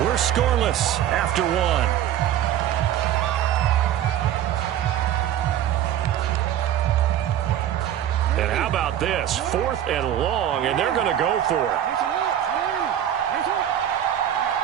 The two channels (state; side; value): quieter; left; 11.0 dB